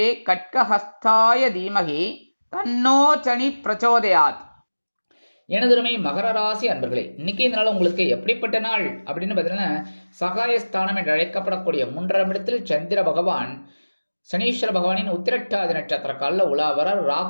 கட்கஹஸ்தாய தீமகி தன்னோ சனி பிரச்சோதயாத். எனதுமை மகர ராசி அன்பர்களே, இன்னைக்கு இந்த நாள் உங்களுக்கு எப்படிப்பட்ட நாள் அப்படின்னு பார்த்தீங்கன்னா, சகாயஸ்தானம் என்று அழைக்கப்படக்கூடிய 3ஆம் இடத்தில் சந்திர பகவான் சனீஸ்வர பகவானின் உத்திரட்டாதி நட்சத்திர காலில் உலாவரார்.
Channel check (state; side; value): inverted; both; correlation -1.00